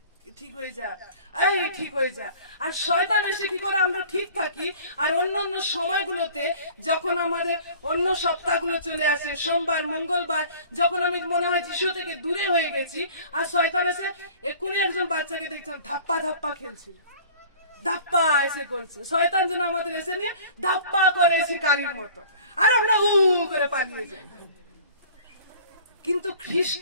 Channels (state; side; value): inverted; both; correlation -0.47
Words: ঠিক হয়ে যা, এই ঠিক হয়ে যা। আর শয়তান এসে কি করে, আমরা ঠিক থাকি, আর অন্যান্য সময়গুলোতে যখন আমাদের অন্য সপ্তাহগুলো চলে আসে, সোমবার মঙ্গলবার, যখন আমি মনে হয় যিশু থেকে দূরে হয়ে গেছি, আর শয়তান এসে এক্ষুনি একজন বাচ্চাকে দেখছিলাম ধাপ্পা ধাপ্পা খেলছিল, ধাপ্পা এসে করছে। শয়তান যেন আমাদের এসে নিয়ে ধাপ্পা করে শিকারীর মতো, আর আমরা উ করে পালিয়ে যাই। কিন্তু